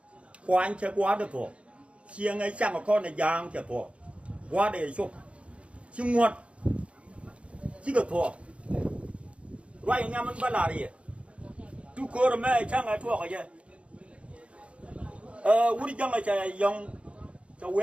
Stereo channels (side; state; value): left; late; 0.061 ms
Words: quan chơi quá được thôi chiêng ấy chẳng có con này giang chơi thôi quá để chụp chứ nguột chứ được thôi ngoài nhà mình bắt lại đi tu cơ rồi mấy chẳng ai thua cái gì uống chẳng ai chơi dùng cho